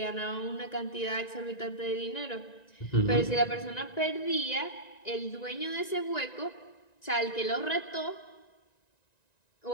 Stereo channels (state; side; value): late; right; 1.9 ms